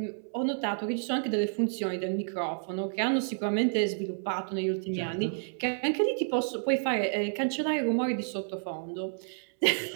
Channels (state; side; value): silent; left; 58 dB below the other